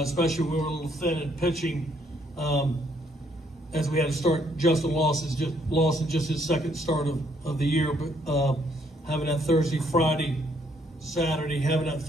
when we were a little thin at pitching, as we had to start Justin Lawson just his second start of the year, but having that Thursday, Friday, Saturday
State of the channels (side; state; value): both; normal; correlation 0.68